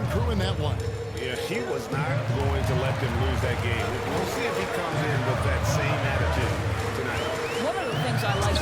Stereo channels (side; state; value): both; identical; correlation 1.00